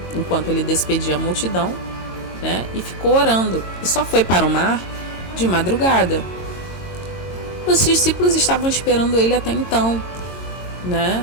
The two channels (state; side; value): late; right; 22 ms